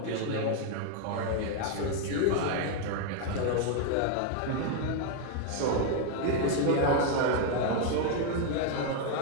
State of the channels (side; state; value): both; different; correlation 0.00